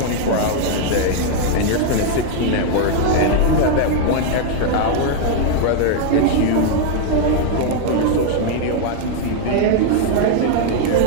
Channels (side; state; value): both; different; correlation 0.00